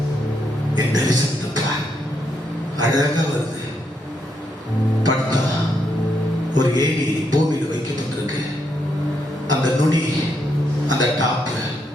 என் தரிசனத்தை பார். அழகா வருது. படுத்தா ஒரு ஏணி பூமியில வைக்கப்பட்டிருக்கு. அந்த நுனி, அந்த டாப்,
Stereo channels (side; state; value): both; normal; correlation 0.78